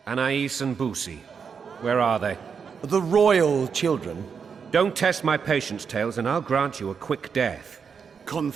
Anais and Boussy, where are they? The royal children. Don't test my patience, Tales, and I'll grant you a quick death.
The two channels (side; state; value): left; quieter; 6.3 dB